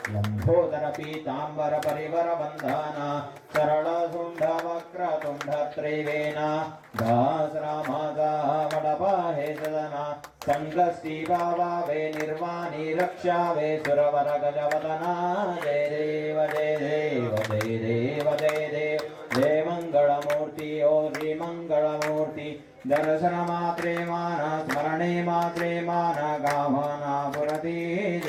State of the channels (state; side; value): identical; both; correlation 1.00